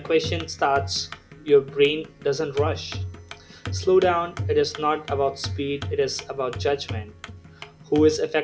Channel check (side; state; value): both; identical; correlation 1.00